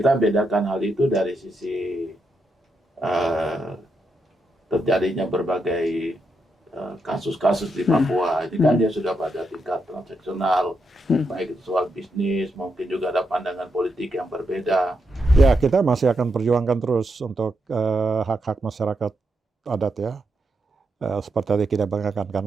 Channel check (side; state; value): both; normal; correlation 0.82